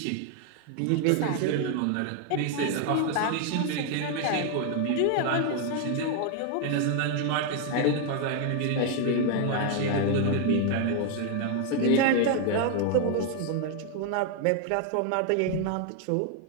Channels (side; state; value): both; different; correlation 0.00